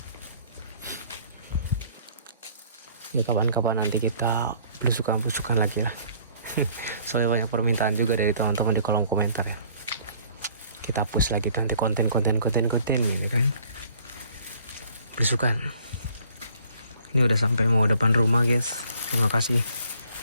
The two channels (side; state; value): both; inverted; correlation -0.59